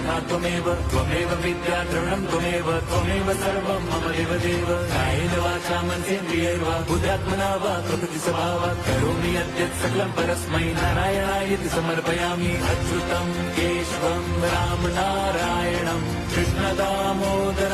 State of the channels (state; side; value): identical; both; correlation 1.00